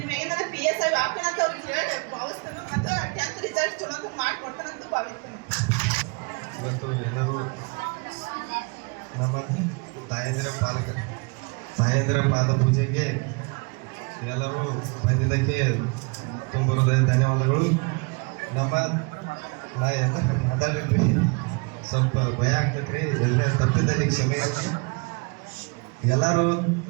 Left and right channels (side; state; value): left; quieter; 32.0 dB